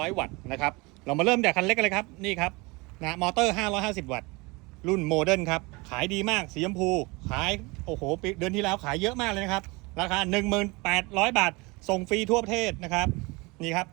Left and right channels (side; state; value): left; quieter; 25.4 dB